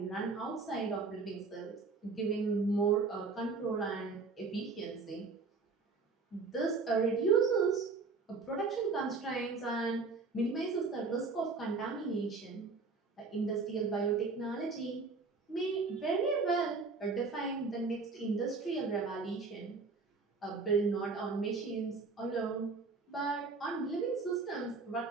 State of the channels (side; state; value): left; quieter; 4.3 dB